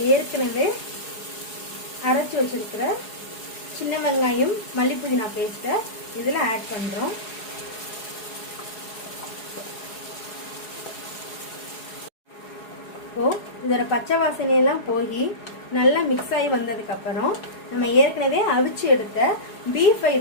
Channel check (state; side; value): late; right; 4.8 ms